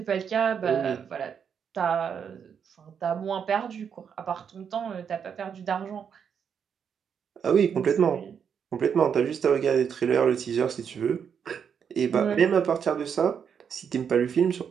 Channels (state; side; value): quieter; left; 7.4 dB